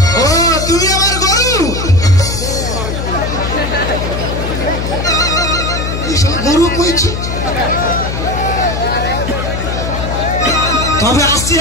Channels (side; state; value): left; noise; hum, 3 dB below the sound